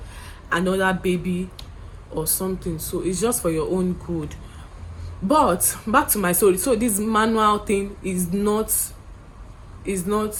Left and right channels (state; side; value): identical; both; correlation 1.00